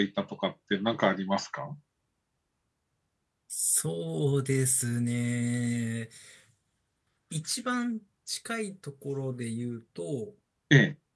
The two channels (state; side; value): identical; both; correlation 1.00